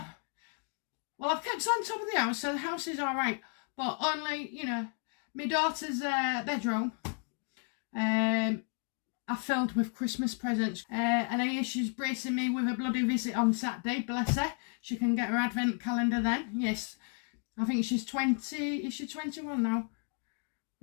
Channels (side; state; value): right; quieter; 38.8 dB